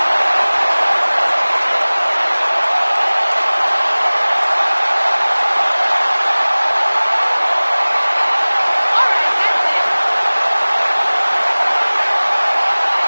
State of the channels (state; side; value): inverted; both; correlation -1.00